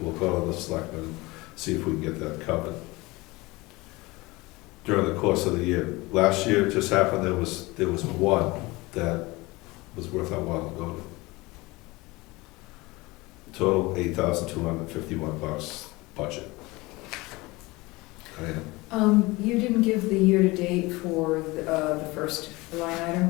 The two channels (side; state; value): right; quieter; 22.3 dB